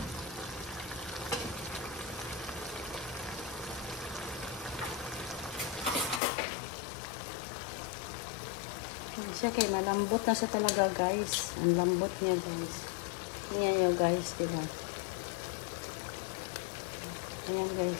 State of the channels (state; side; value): drops out; right; at 6.2 s